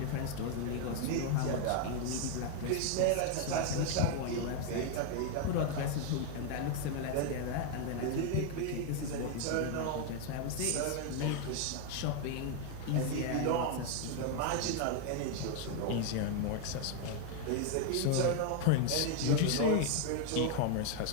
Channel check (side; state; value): both; different; correlation 0.00